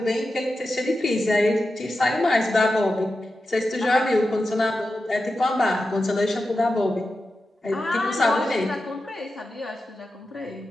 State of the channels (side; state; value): both; normal; correlation 0.91